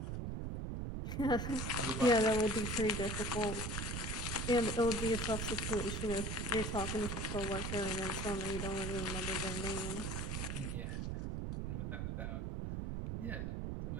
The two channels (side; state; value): right; noise; rumble, 2 dB below the sound